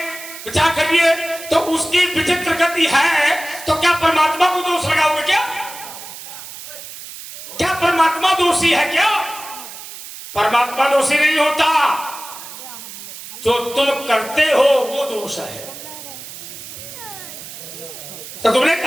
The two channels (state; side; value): noise; right; hiss, 13 dB below the sound